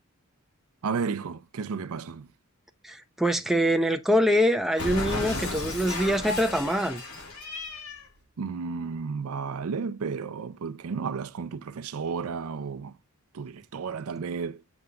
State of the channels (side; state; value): both; normal; correlation 0.66